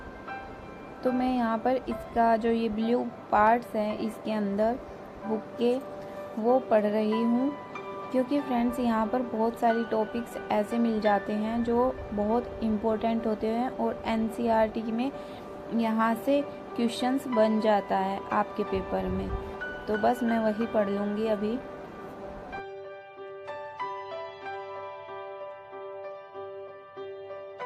तो मैं यहाँ पर इसका जो ये ब्लू पार्ट्स हैं इसके अंदर बुक के वो पढ़ रही हूँ, क्योंकि फ्रेंड्स यहाँ पर बहुत सारी टॉपिक्स ऐसे मिल जाते हैं जो बहुत इम्पोर्टेंट होते हैं और NCERT में यहाँ से क्वेश्चंस बन जाता है आपके पेपर में। तो बस मैं वही पढ़ लूँगी अभी।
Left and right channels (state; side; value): identical; both; correlation 1.00